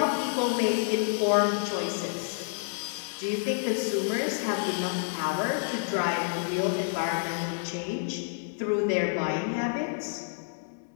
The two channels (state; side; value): silent; right; 59 dB below the other